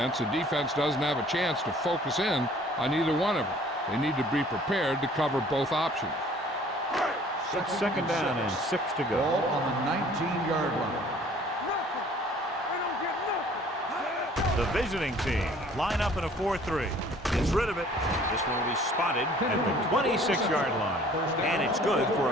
the defense doesn't have a chance to focus in on either one of them. They need to be prepared to cover both options. It's second down and 6 to go. Ball on the 19-yard line. The The visiting team line up in a 4-3. Gets rid of it. This one will be spotted at the 26-yard line. And it's good for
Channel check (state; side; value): normal; both; correlation 0.54